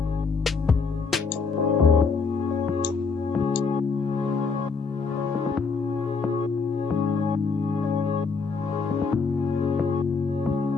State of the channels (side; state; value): right; quieter; 4.7 dB